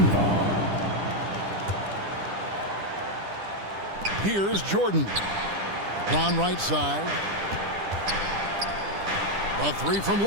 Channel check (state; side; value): late; left; 10 ms